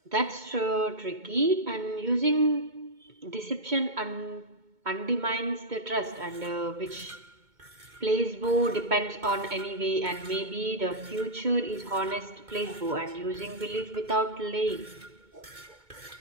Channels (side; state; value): left; late; 2.2 ms